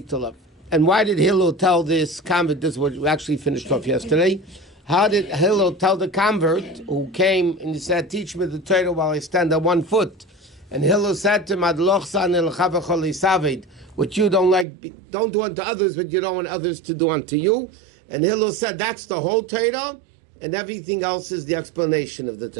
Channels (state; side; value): drops out; left; at 14.7 s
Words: love? And why did Hillel tell this convert, this is what we actually finished off yesterday, how did Hillel tell the convert who came and he said, teach me the Torah while I stand on one foot? And Hillel said to him, what you don't like, don't do unto others, but you don't want others to do unto you. And Hillel said, that's the whole Torah, and everything else is the explanation of the